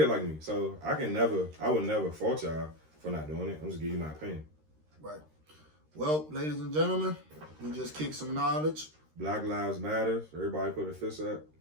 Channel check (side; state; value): left; late; 13 ms